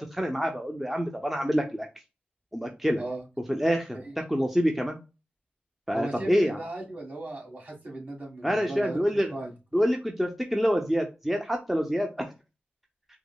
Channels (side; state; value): both; normal; correlation 0.96